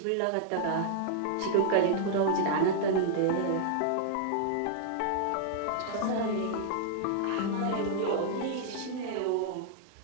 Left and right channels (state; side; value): different; both; correlation -0.01